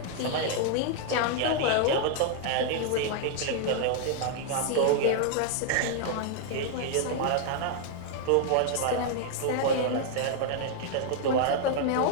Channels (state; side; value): different; both; correlation 0.00